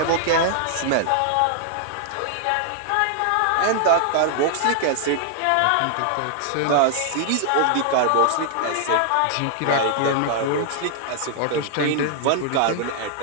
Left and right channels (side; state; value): both; different; correlation -0.01